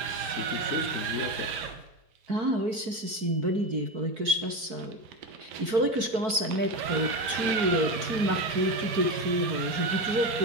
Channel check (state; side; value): late; left; 4.6 ms